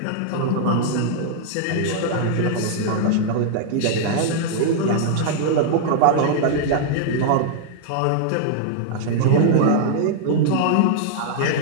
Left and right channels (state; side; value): different; both; correlation -0.01